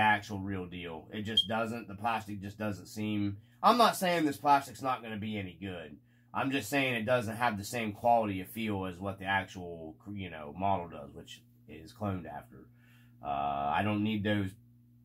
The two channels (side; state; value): both; identical; correlation 1.00